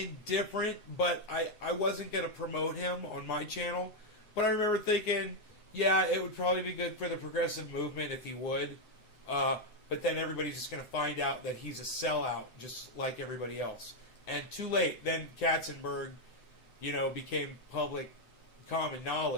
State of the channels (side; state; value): right; late; 7.9 ms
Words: but I wasn't going to promote him on my channel. But I remember thinking, yeah, it would probably be good for the progressive movement if he would. But then everybody's just going to find out that he's a sellout, just like everybody else. And too late. Then Katzenberg, became public common